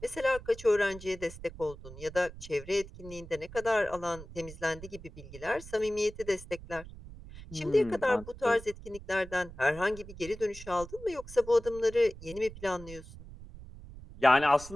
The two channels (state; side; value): noise; right; rumble, 15 dB below the sound